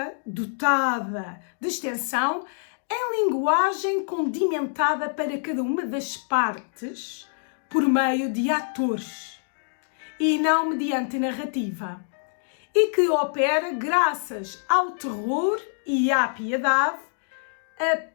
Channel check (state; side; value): silent; right; digital silence